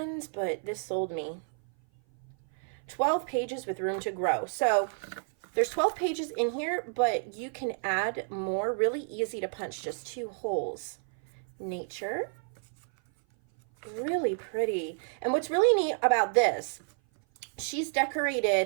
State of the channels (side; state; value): left; silent; 56 dB below the other